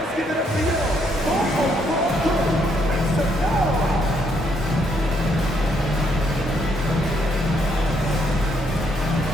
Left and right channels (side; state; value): both; normal; correlation 0.73